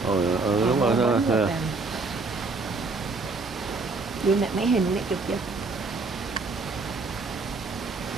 Đúng rồi. Đưa mẹ mấy hình này chụp chưa?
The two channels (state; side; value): quieter; left; 3.8 dB